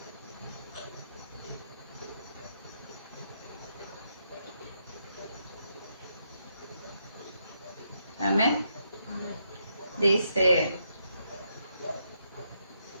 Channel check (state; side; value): inverted; both; correlation -0.79